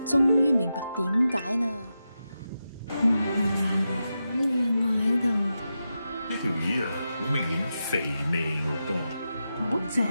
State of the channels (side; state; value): both; inverted; correlation -0.89